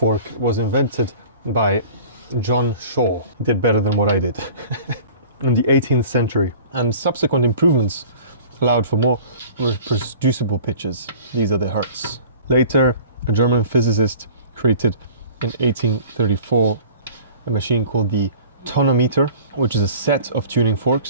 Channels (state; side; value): inverted; both; correlation -0.45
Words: was invented by John Shaw. He did better than what I did. In the 18th century, and subsequent improvements allowed for more reproducible pitches. These are the hertz. Later, a German physicist created in 1834 a machine called the tonometer, which is a set of tuning